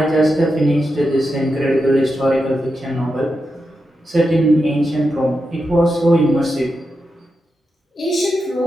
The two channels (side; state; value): both; normal; correlation 0.88